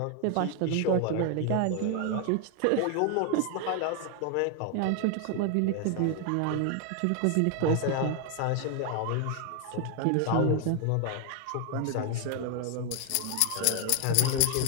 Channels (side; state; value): both; different; correlation 0.01